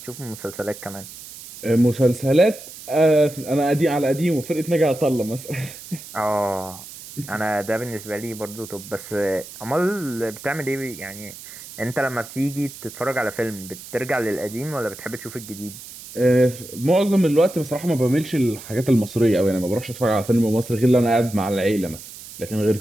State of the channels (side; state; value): right; noise; hiss, 15 dB below the sound